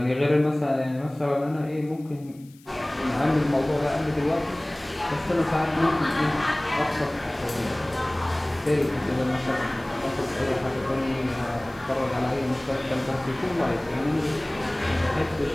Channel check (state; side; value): noise; left; hiss, 27 dB below the sound